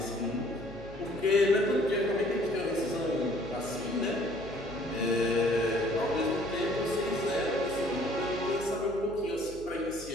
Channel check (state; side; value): noise; right; hum, 16 dB below the sound